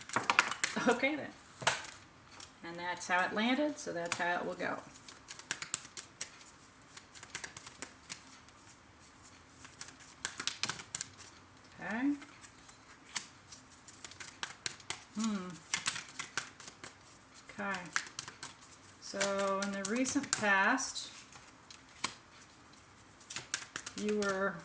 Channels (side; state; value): both; identical; correlation 1.00